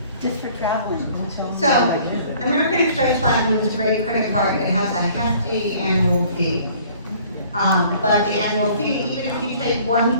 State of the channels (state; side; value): inverted; both; correlation -0.55